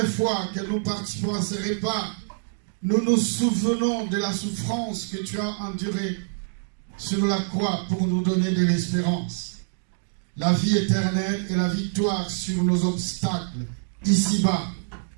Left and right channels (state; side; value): silent; left; digital silence